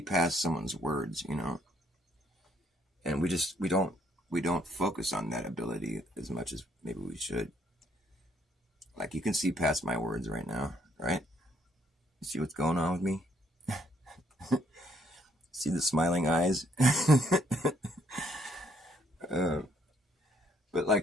past someone's words, and we don't focus on that ability as much as maybe we should. Like, you can see past my words right now, right? You see what's going on with me? See the smiling eyes? But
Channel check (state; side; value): normal; both; correlation 0.68